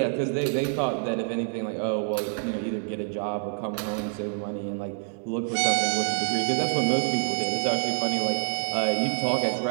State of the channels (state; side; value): silent; left; 57 dB below the other